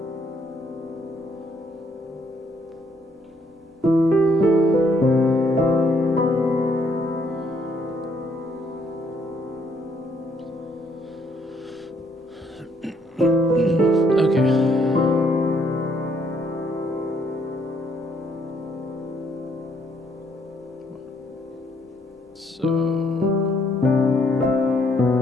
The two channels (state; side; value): normal; both; correlation 0.69